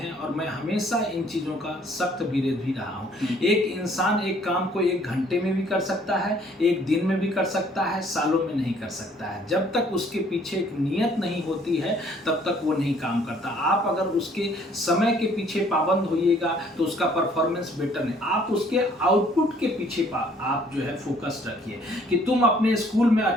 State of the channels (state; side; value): normal; both; correlation 0.60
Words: और मैं हमेशा इन चीज़ों का सख्त विरोध भी रहा हूँ। एक इंसान एक काम को 1 घंटे में भी कर सकता है, 1 दिन में भी कर सकता है, सालों में नहीं कर सकता है। जब तक उसके पीछे एक नियत नहीं होती है तब तक वो नहीं काम करता। आप अगर उसके समय के पीछे पाबंद होइएगा तो उसका परफॉर्मेंस बेटर नहीं। आप उसके आउटपुट के पीछे आप जो है फोकस रखिए कि तुम अपने स्कूल में